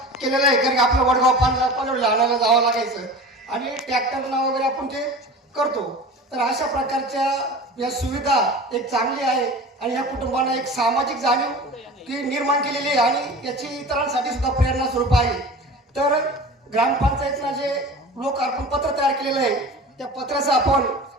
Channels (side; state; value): both; normal; correlation 0.36